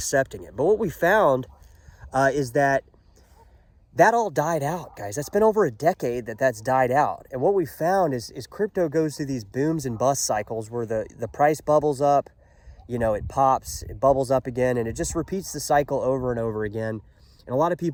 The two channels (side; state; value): both; identical; correlation 1.00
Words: it. But what we found is that all died out, guys. That's been over a decade that's died out. And what we found is crypto goes through these booms and bust cycles where the price bubbles up, it pops, it bubbles up again, and it just repeats the cycle over and over again. And a lot of